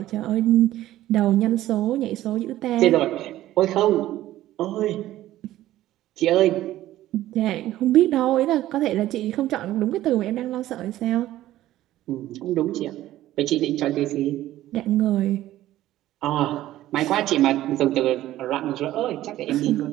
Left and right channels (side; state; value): left; quieter; 14.5 dB